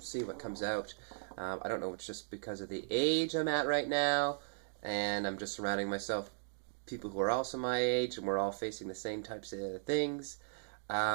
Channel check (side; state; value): left; silent; digital silence